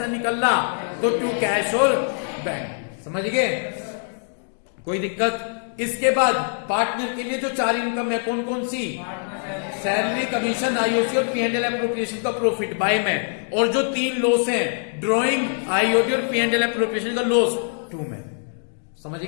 निकलना तो टू कैश और बैंक। समझ गए? कोई दिक्कत? इसके बाद पार्टनर के लिए जो 4 इनकम है, कौन कौन सी? सैलरी, कमीशन, आईओसी और P&L एप्रोप्रिएशन का प्रॉफिट बाय में, और जो 3 लॉस हैं, ड्रॉइंग, आईओसी और P&L एप्रोप्रिएशन का लॉस 2 में। समझ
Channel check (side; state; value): right; silent; 62 dB below the other